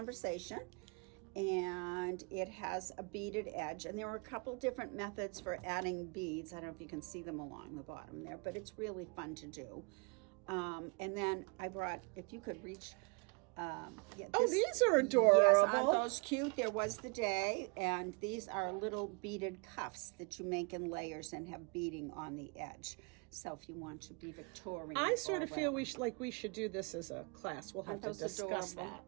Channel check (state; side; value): quieter; left; 31.5 dB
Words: and it has a beaded edge, and there are a couple different methods for adding beads. I don't know if you can see them along the bottom there, but it's really fun to do. And then I brought, if you could reach. These are adorable. Yes, aren't those cute? There was the day, and these are little beaded cuffs that you make in layers and have beading on the edge. So if you want to be Victorian, I sort of or feel whatever. we should do this as a class. We'll have Aren't to those discuss adorable? that.